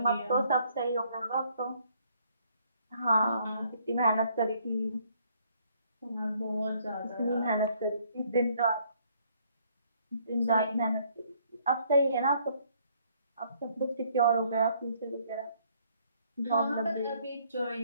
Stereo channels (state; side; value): inverted; both; correlation -0.66